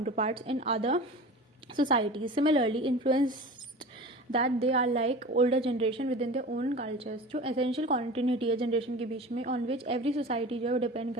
in other societies, similarly influenced that they are like older generation within their own cultures। जो essential continuity है generation के बीच में, on which every society जो है वो depend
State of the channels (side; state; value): both; normal; correlation 0.35